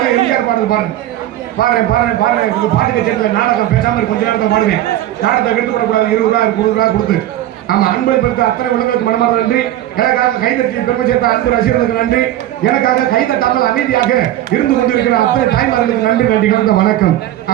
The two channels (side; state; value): left; quieter; 13.4 dB